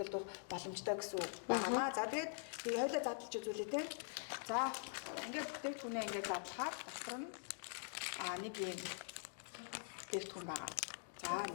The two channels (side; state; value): right; silent; digital silence